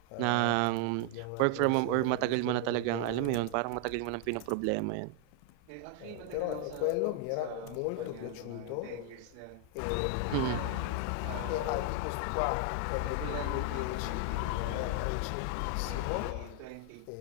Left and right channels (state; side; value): different; both; correlation 0.00